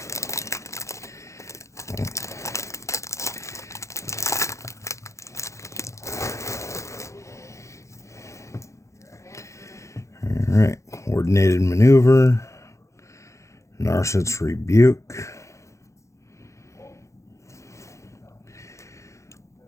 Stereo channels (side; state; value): right; late; 0.14 ms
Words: Alright, Coordinated Maneuver, Narset's Rebuke,